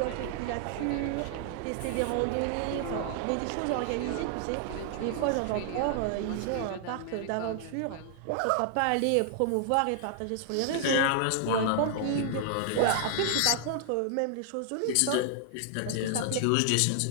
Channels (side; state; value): both; different; correlation -0.01